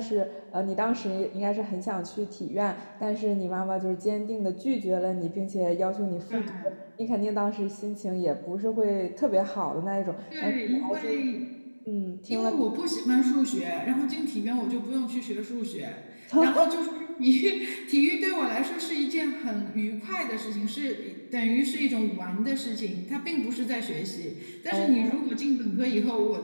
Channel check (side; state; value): both; inverted; correlation -1.00